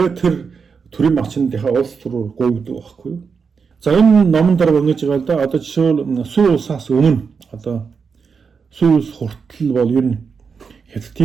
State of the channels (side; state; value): left; quieter; 5.7 dB